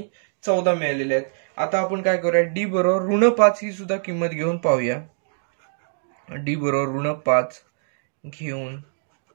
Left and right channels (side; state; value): left; silent; digital silence